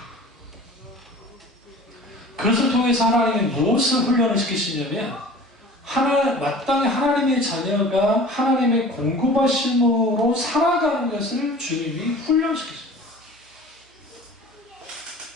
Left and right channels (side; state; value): both; normal; correlation 0.43